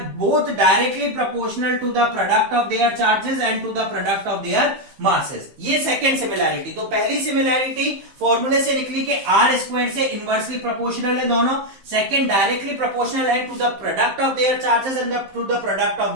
both directly proportional to the product of their charges and to the product of their masses. ये second similarity. तो पहली similarity फॉर्मूले से निकली कि r square से inversely proportional है दोनों. सेकंड डायरेक्टली प्रोपोर्शनल है to the product of their charges and to the product of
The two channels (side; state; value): left; late; 15 ms